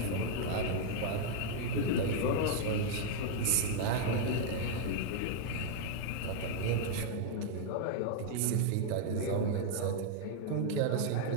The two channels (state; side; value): different; both; correlation 0.00